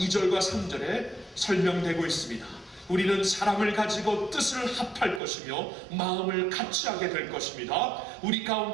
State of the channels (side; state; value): left; drops out; at 5.2 s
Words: 3절에 설명되고 있습니다. 우리는 사랑을 가지고 뜻을 합할 것이며 마음을 같이 하게 될 것입니다. 우리